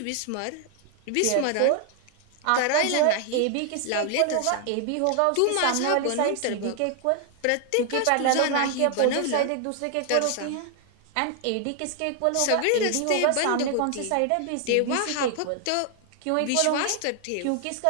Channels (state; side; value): different; both; correlation 0.00